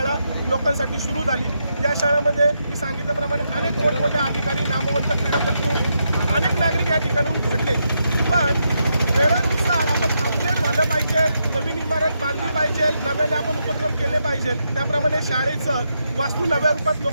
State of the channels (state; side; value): inverted; both; correlation -0.82